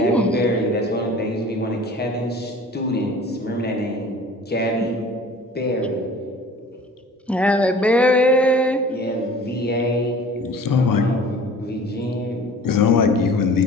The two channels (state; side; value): normal; both; correlation 0.45